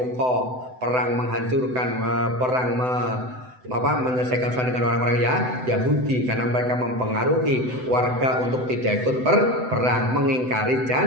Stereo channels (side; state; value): left; late; 7.9 ms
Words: perang menghancurkan, perang menyelesaikan urusan dengan orang-orang Yahudi karena mereka mempengaruhi warga untuk tidak ikut berperang, mengingkari